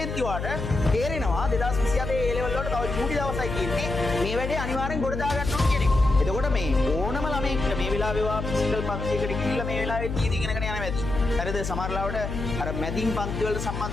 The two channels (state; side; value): noise; left; hum, 5 dB below the sound